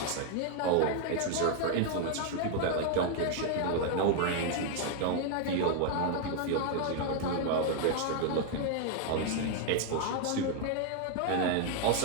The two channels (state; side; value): different; both; correlation 0.00